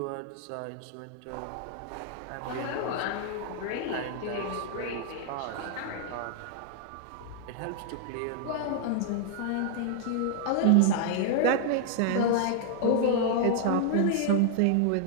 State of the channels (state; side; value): different; both; correlation 0.00